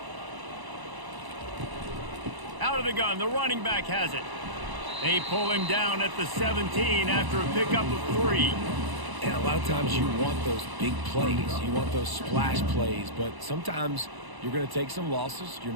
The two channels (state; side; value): late; left; 1.0 ms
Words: Out of the gun, the running back has it. They pull him down at the 17 after a pickup of 3. And a lot of times you want those big plays. You want those splash plays. But sometimes you're going to take some losses. You're